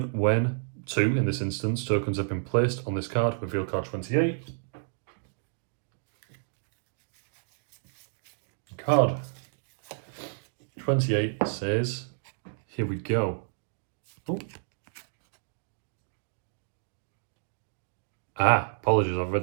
when 2, in this instance, tokens have been placed on this card, reveal card 28. Card 28 says, here we go. Ooh. Apologies, I've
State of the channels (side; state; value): left; silent; digital silence